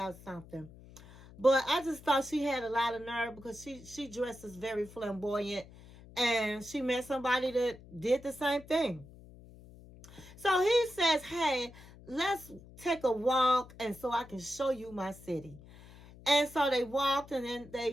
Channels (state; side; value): noise; left; hum, 20 dB below the sound